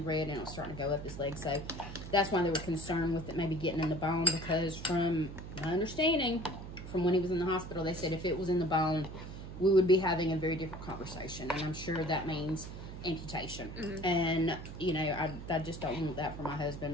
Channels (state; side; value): noise; right; hum, 10 dB below the sound